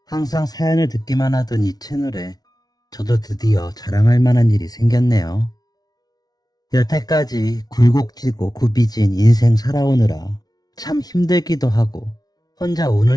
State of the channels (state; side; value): late; right; 0.19 ms